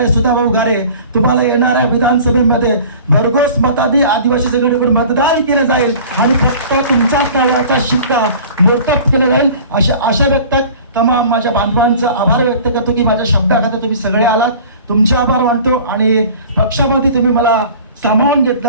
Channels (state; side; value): inverted; both; correlation -0.44